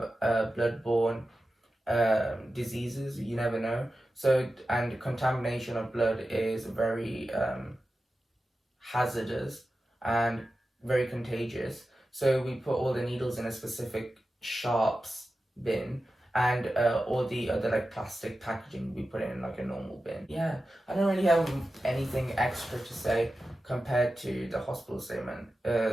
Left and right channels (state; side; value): normal; both; correlation 0.93